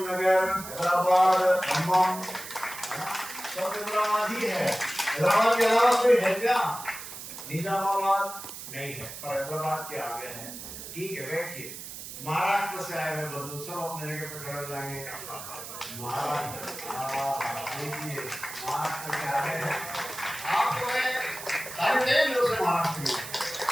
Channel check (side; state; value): right; noise; hiss, 11 dB below the sound